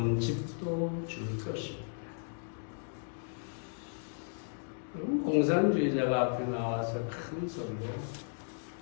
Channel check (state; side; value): silent; right; digital silence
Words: 집도 줄 것입니다. 공산주의자가 앞에 나와서 큰 소리로